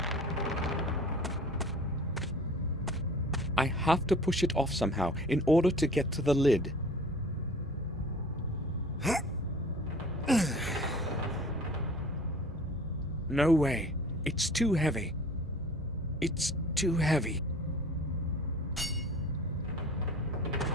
I have to push it off somehow in order to get to the lid. No way. It's too heavy. It's too heavy.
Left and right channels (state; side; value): normal; both; correlation 0.45